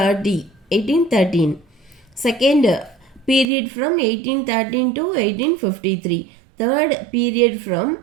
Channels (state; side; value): drops out; left; at 3.5 s